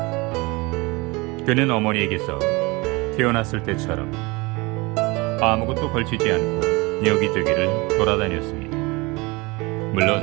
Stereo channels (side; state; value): left; quieter; 25.1 dB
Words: 그는 어머니에게서 태어났을 때처럼 아무것도 걸치지 않고 여기저기를 돌아다녔습니다.